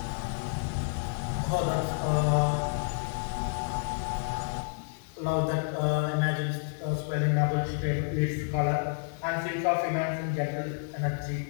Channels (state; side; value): silent; right; 58 dB below the other